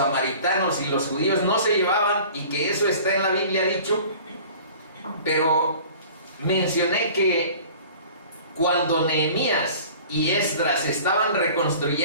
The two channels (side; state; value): both; inverted; correlation -0.45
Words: y los judíos no se llevaban y que eso está en la Biblia dicho, pero mencioné que cuando Nehemías y Esdras estaban